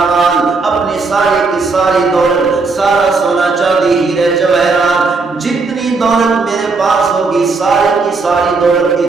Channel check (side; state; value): left; quieter; 4.1 dB